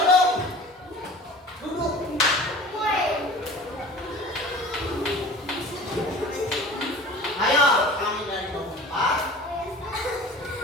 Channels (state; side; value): normal; both; correlation 0.41